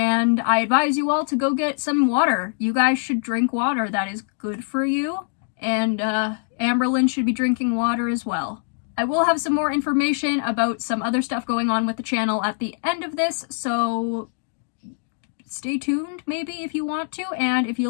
I advise you all to go get some water. You guys should drink water. That is good for you. And Amberlynn should be drinking water as well. I will have some more information about some other stuff going on with the channel at the end of this, so stay tuned maybe if you want to. And if you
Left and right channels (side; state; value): right; silent; digital silence